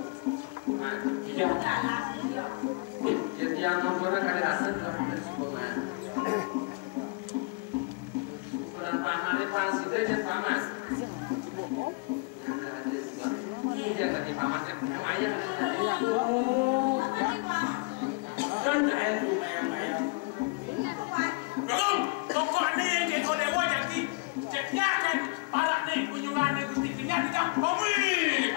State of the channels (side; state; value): right; quieter; 29.1 dB